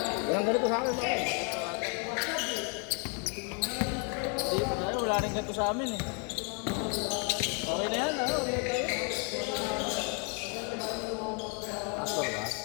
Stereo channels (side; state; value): right; quieter; 37.9 dB